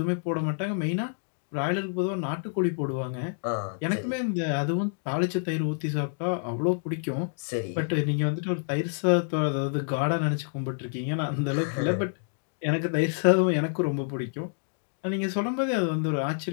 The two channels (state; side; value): silent; right; digital silence